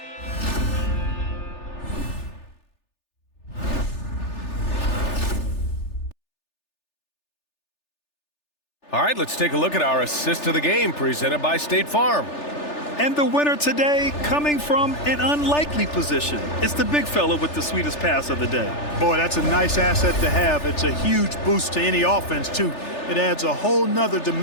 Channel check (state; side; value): late; right; 3.4 ms